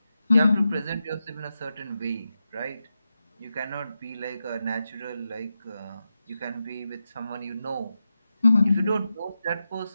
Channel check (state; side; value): inverted; both; correlation -0.90